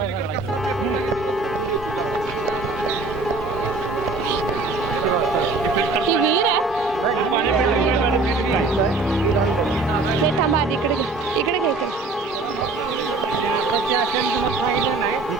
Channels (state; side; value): quieter; left; 3.5 dB